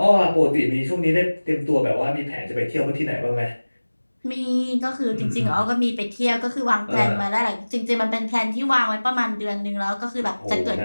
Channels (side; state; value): both; inverted; correlation -1.00